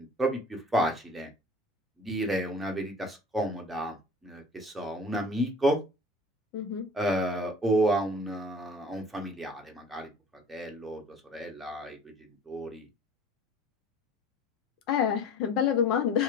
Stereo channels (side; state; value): both; normal; correlation 0.44